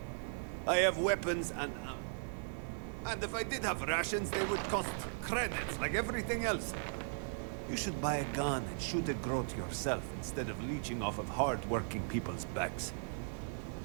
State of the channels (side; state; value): left; silent; digital silence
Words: I have weapons and ammo. And if I did have rations, they would cost credits like everything else. You should buy a gun and shoot a growth yourself instead of leeching off of hard-working people's backs.